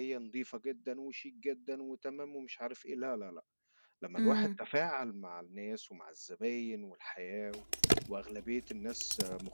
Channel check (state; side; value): inverted; both; correlation -1.00